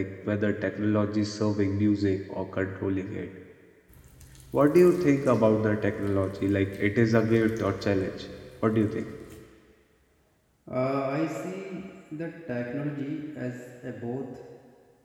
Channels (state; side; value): identical; both; correlation 1.00